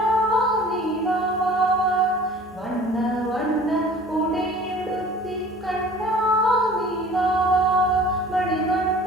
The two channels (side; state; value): both; normal; correlation 0.46